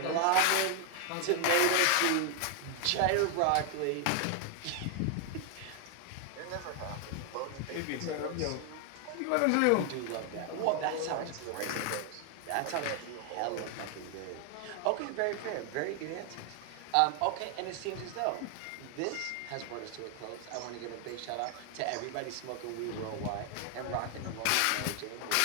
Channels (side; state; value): both; different; correlation 0.00